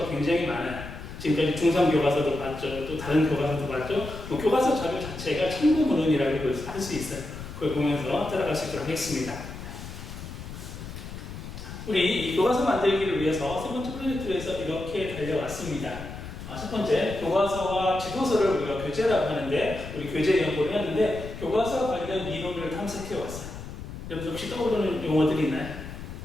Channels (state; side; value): noise; left; rumble, 11 dB below the sound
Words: 굉장히 많아요. 지금까지 중3 교과서도 봤죠. 또 다른 교과서도 봤죠. 교과서 자료 자체가 참고문헌이라고 할 수 있어요. 그걸 보면서 따라갈 수 있도록 하겠습니다. 우리 이 교과서 만들기를 위해서 세 번째 프로젝트를 해서 이렇게 달려왔습니다. 첫 번째, 교과서와 지도서를 우리가 교재라고 하는데, 우리 교재 연구를 했는데 교과서 관련 이론을 탐색해 왔어요. 여러분 혹시 떠오르는 용어들이 있나요?